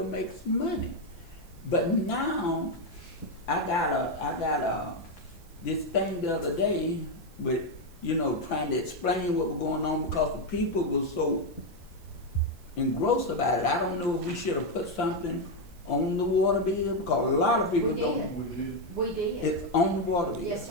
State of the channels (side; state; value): right; noise; hiss, 27 dB below the sound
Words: makes money. But now, I got this thing the other day with, trying to explain what was going on because the people were so engrossed about it. I don't know if we should have put something on the water bill, because a lot of people We don't. did. We did. We did. It's on the water bill. Yes,